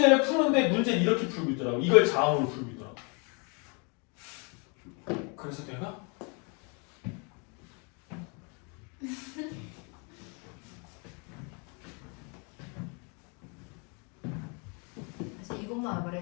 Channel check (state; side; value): quieter; right; 34.3 dB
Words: 푸는데 문제는 이렇게 풀고 있더라고. 이걸 자음으로 풀고 있더라고. 그래서 내가 사실 이것만